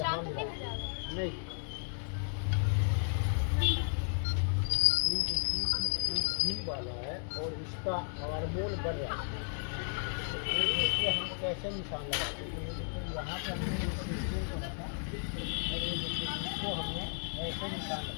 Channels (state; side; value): silent; right; 55 dB below the other